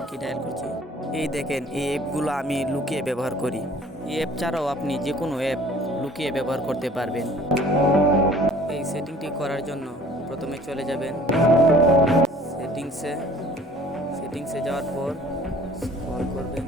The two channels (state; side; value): normal; both; correlation 0.51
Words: কি ডায়াল করছি। এই দেখেন এই অ্যাপগুলো আমি লুকিয়ে ব্যবহার করি। এই অ্যাপ ছাড়াও আপনি যে কোনো অ্যাপ লুকিয়ে ব্যবহার করতে পারবেন। এই সেটিংটি করার জন্য প্রথমে চলে যাবেন সেটিংসে যাওয়ার পর স্ক্রল করবেন।